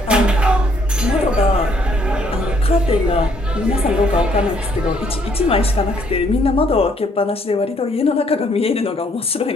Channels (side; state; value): both; normal; correlation 0.67